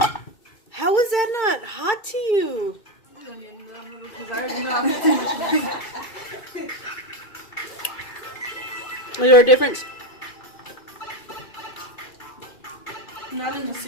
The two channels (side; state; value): right; late; 2.5 ms